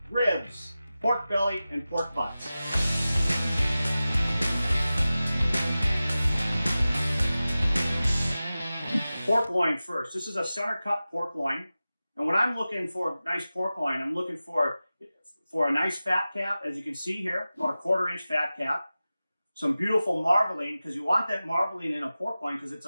ribs, pork belly, and pork butts. Pork loin first. This is a center cut pork loin. And when I'm looking for a nice pork loin, I'm looking for a nice fat cap, as you can see here, or a 1/4 inch fat cap. Some beautiful marbling, because you want that marbling in a pork loin because it's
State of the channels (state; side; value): inverted; both; correlation -0.96